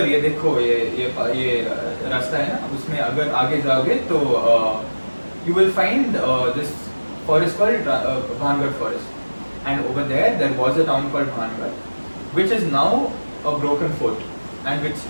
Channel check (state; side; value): inverted; both; correlation -1.00